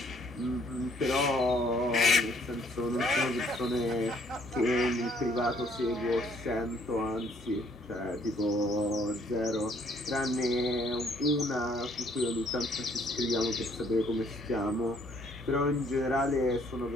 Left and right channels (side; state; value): both; normal; correlation 0.64